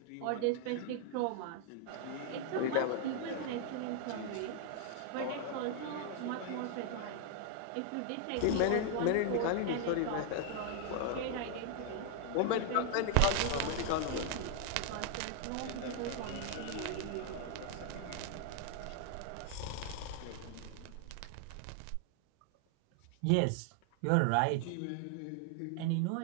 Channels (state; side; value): different; both; correlation 0.00